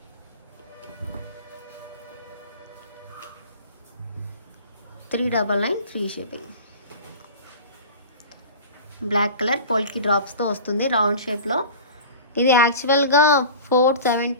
$399 ఫ్రీ షిప్పింగ్. బ్లాక్ కలర్ పోల్కి డ్రాప్స్తో వస్తుంది రౌండ్ షేప్లో. ఇది యాక్చువల్గా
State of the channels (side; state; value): both; inverted; correlation -0.37